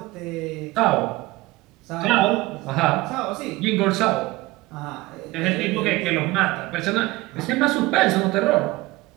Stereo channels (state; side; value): quieter; left; 20.1 dB